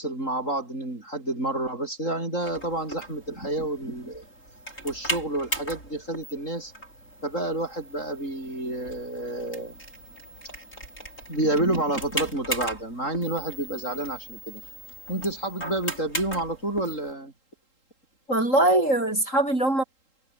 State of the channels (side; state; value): right; late; 3.8 ms